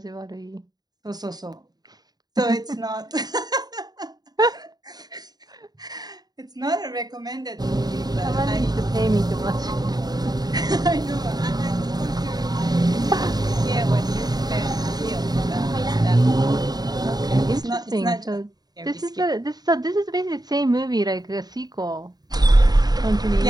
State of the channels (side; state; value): left; late; 0.19 ms